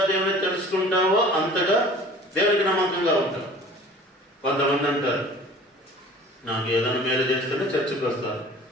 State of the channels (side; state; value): both; normal; correlation 0.46